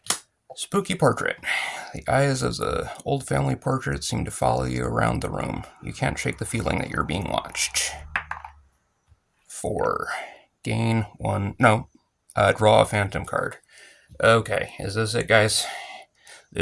Spooky portrait. The eyes of the old family portrait seem to follow you around the room. You can't shake the feeling that you're being watched. 4. Gain 1. No. Draw a Phantom card. Okay, is this it, guys?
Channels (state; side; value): identical; both; correlation 1.00